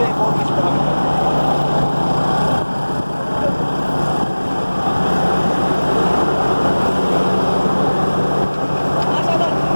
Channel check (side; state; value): both; inverted; correlation -1.00